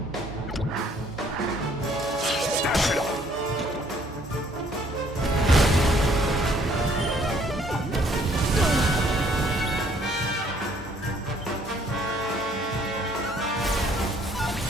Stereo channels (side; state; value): both; normal; correlation 0.62